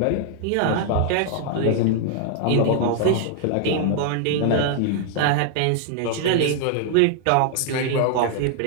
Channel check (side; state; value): both; different; correlation 0.00